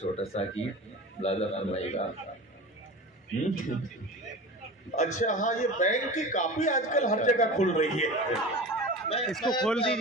सा गीत लादा फरमाएगा। अच्छा हाँ, ये बैंक की कापी आजकल हर जगह खुल रही है। इसको खोल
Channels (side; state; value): both; normal; correlation 0.33